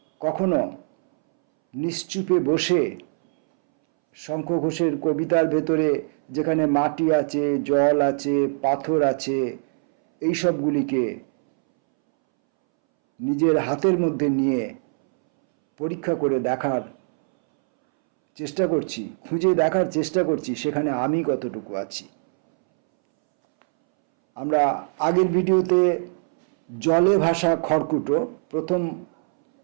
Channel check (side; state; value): left; silent; 64 dB below the other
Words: কখনো নিশ্চুপে বসে শঙ্খ ঘোষের কবিতার ভেতরে যেখানে মাটি আছে, জল আছে, পাথর আছে, এই সবগুলিকে নিজের হাতের মধ্যে নিয়ে পরীক্ষা করে দেখার চেষ্টা করছি, খুঁজে দেখার চেষ্টা করছি সেখানে আমি কতটুকু আছি। আমরা আগের ভিডিওতে জলে ভাসা খড়কুটো প্রথম